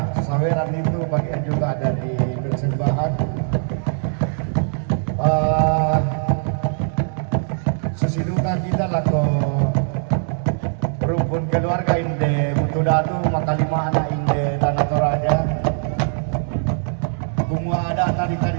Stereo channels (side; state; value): left; silent; 63 dB below the other